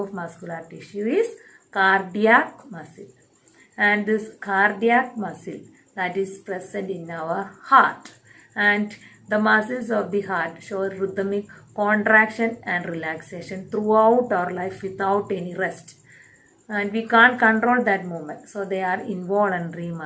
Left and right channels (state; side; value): identical; both; correlation 1.00